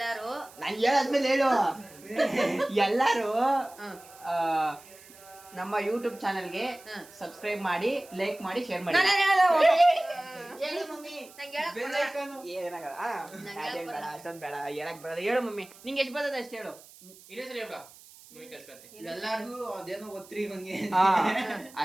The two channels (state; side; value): noise; right; hiss, 22 dB below the sound